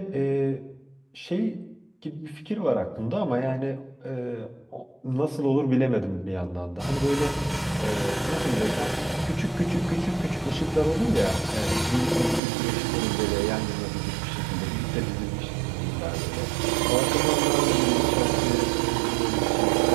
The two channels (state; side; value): drops out; left; at 12.4 s